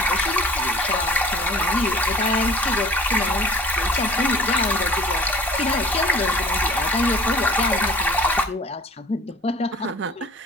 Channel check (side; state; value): both; normal; correlation 0.48